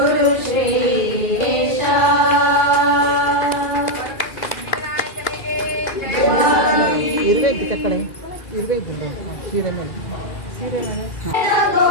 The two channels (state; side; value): late; right; 2.4 ms